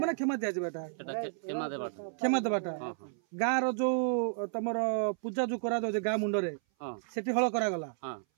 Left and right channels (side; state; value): left; silent; 56 dB below the other